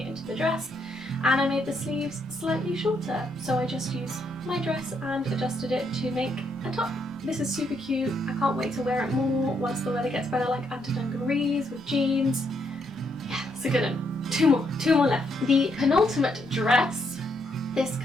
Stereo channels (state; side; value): normal; both; correlation 0.75